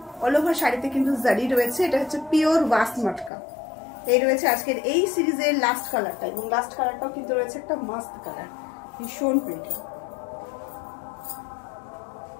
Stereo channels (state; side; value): drops out; right; at 3.3 s